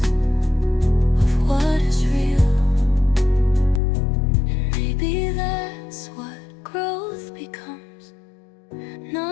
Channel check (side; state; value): right; drops out; at 3.8 s